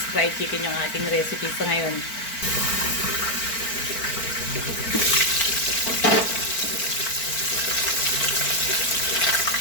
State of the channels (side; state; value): right; late; 4.4 ms